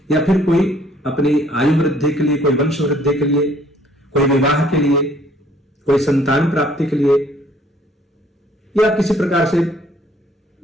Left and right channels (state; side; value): normal; both; correlation 0.61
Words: या फिर कोई अपनी आयु वृद्धि के लिए, कोई वंश वृद्धि के लिए, कोई विवाह के लिए, कोई संतान प्राप्ति के लिए, या किसी प्रकार से